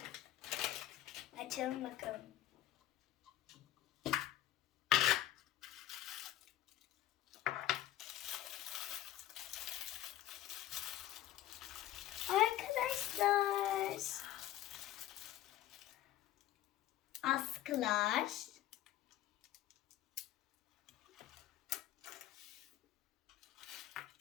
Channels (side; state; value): right; quieter; 13.6 dB